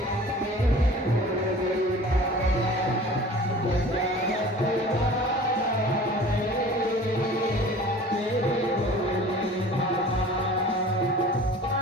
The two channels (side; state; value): both; normal; correlation 0.43